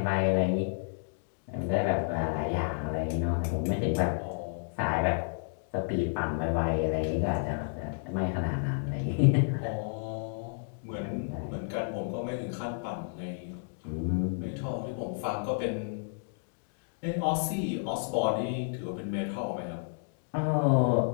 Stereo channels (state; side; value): silent; right; digital silence